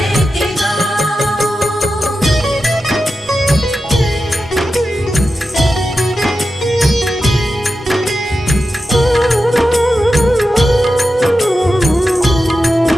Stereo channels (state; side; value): normal; both; correlation 0.91